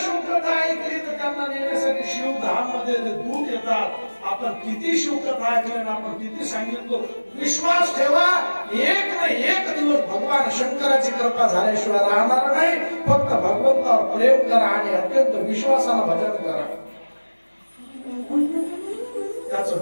ऐकली तर त्यांना नेण्यासाठी शिवधाम मध्ये दूत येतात. आपण किती शिवकथा ऐकल्या, आपण किती सांगितलं, विश्वास ठेवा, एक ना एक दिवस भगवान शंकराची कृपा झाल्याशिवाय राहणार नाही. फक्त भगवंतावर प्रेम करा आणि अत्यंत विश्वासानं भजन करा,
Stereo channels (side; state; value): both; inverted; correlation -1.00